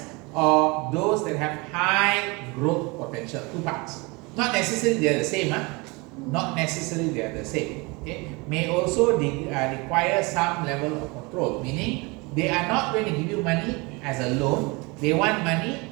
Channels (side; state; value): left; quieter; 26.7 dB